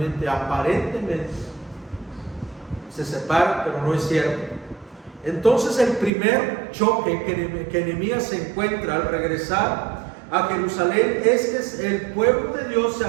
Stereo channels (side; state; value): left; drops out; at 6.1 s